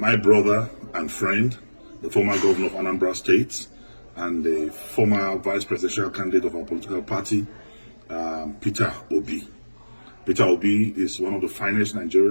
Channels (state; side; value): inverted; both; correlation -1.00